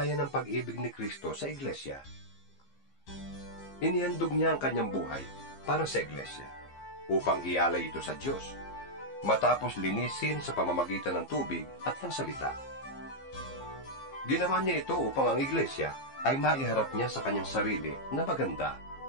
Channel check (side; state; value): right; late; 15 ms